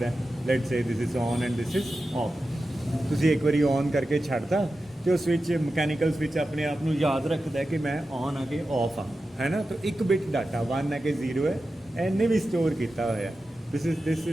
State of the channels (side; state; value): both; normal; correlation 0.92